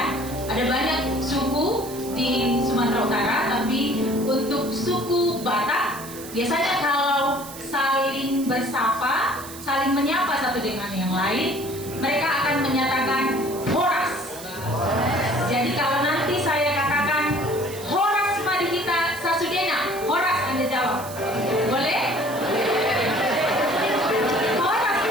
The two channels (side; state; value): right; noise; hiss, 14 dB below the sound